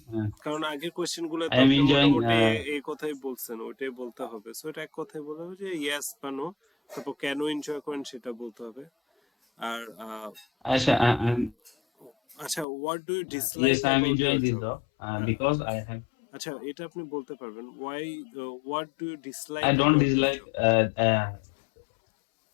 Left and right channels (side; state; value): right; drops out; at 12.7 s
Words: কারণ আগের কোয়েশ্চেন গুলো I তো am আপনি enjoying, মোটামুটি এই কথাই বলছেন, ওইটাই বলতে হবে। সো এটা এক কথাই বলতে হবে যে ইয়েস বা নো, তারপর কেন এনজয় করেন সেটা bলতে হবে। আর Asha, আচ্ছা, what do you dislike yes, I am about enjoying your this job? job, because I have, আচ্ছা, এটা আপনি বলতে পারবেন, why, what do you dislike I don't about your dislike, job?